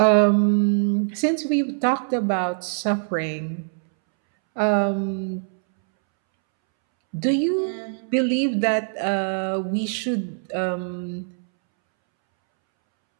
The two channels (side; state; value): left; silent; 63 dB below the other